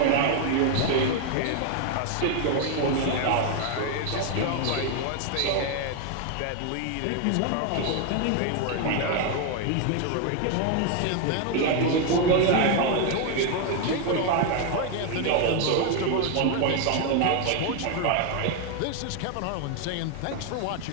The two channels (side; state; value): both; different; correlation 0.01